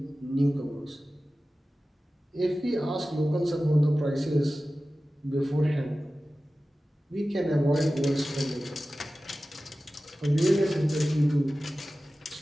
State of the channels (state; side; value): normal; both; correlation 0.95